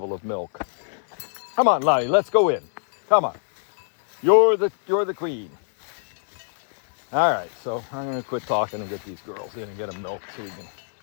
of milk. Come on, Lottie, let's go in. Come on. You're the queen. All right, so I'm going to quit talking and get these girls in and get them milk so we can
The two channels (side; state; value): right; silent; 63 dB below the other